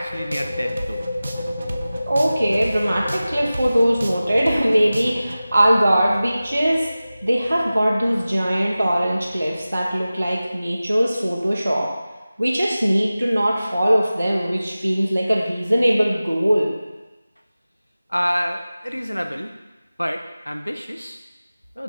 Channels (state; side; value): inverted; both; correlation -0.96